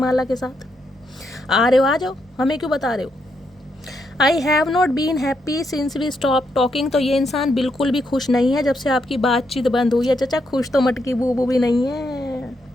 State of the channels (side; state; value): both; normal; correlation 0.79